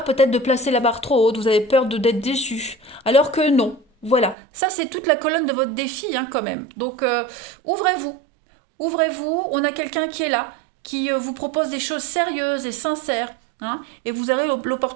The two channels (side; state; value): left; drops out; at 4.4 s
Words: peut-être de placer la barre trop haute, vous avez peur d'être déçu. Alors que non. Voilà. Ça, c'est toute la colonne de votre défi, hein, quand même. Donc, ouvrez-vous. Ouvrez-vous. On a quelqu'un qui est là, qui vous propose des choses sérieuses et sincères. Hein, et vous avez